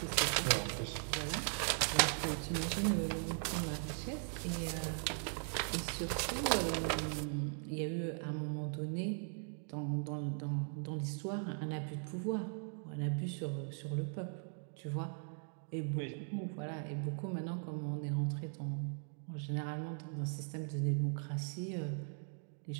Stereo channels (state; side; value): silent; left; 52 dB below the other